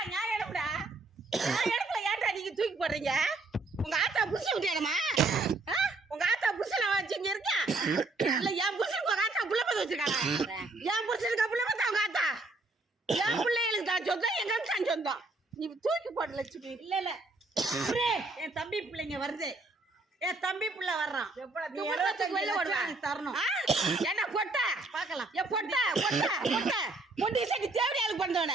நான் எடுப்படா? நான் எடுக்கல, ஏன்டா நீங்க தூக்கி போடுறீங்க? உங்க ஆத்தா புருஷன் விட்டியாடமா? உங்க ஆத்தா புருஷனை வச்சு இங்க இருக்கா? இல்ல என் புருஷனுக்கு உங்க ஆத்தா புள்ள பார்த்து வச்சிருக்காங்க. என் புருஷனுக்கு புள்ள பார்த்தா உங்க ஆத்தா என் பிள்ளைகளுக்கு தான் சொந்தம், எங்க தான் சொந்தம். நீ தூக்கி போட லட்சுமி. இல்ல இல்ல என் தம்பி பிள்ளைங்க வருது, என் தம்பி பிள்ளை வர்றான். தரணும் என்ன பொட்ட பாக்கலாம்? என் பொட்ட பொட்ட பொட்ட பொண்டி சட்டி தேவையாளுக்கு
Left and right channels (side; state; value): left; quieter; 3.2 dB